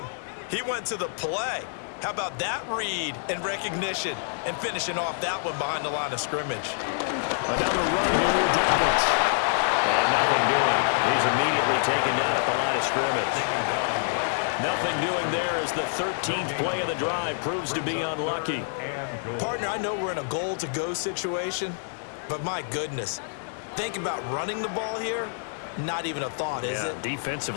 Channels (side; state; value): right; silent; digital silence